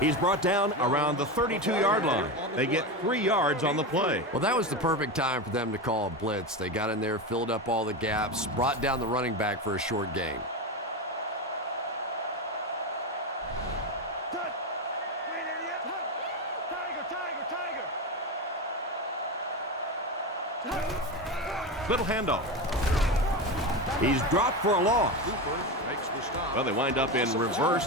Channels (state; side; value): normal; both; correlation 0.19